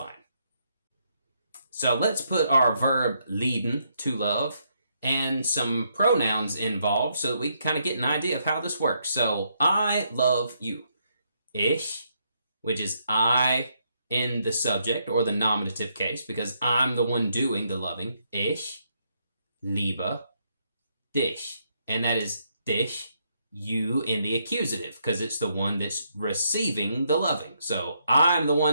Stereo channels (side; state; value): both; inverted; correlation -0.76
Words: So let's put our verb lieben, to love, and some pronouns involved so that we can kind of get an idea of how this works. So I love you. Ich, which is I in the subject or the nominative case, because I'm the one doing the loving. Ich liebe dich. And that is dich, you in the accusative, because it's the one that's receiving the loving. So I'm the